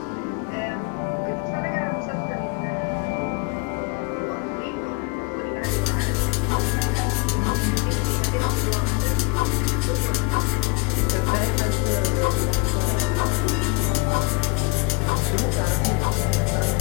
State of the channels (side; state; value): right; quieter; 25.4 dB